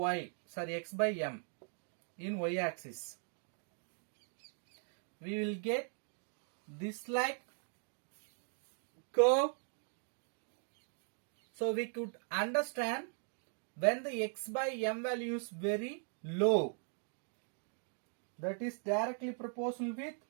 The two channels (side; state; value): left; silent; 51 dB below the other